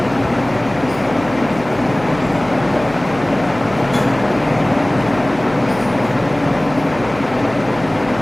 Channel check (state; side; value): noise; right; hum, 16 dB below the sound